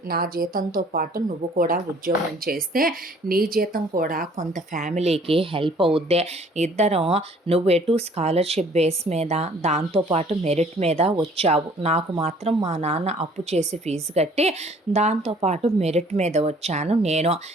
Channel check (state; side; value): normal; both; correlation 0.56